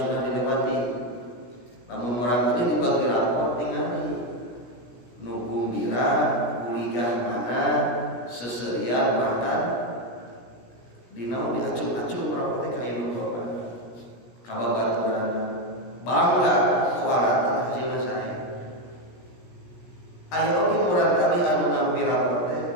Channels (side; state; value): right; late; 17 ms